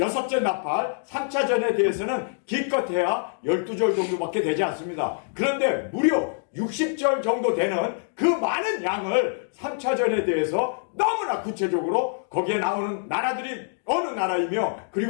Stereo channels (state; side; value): silent; right; digital silence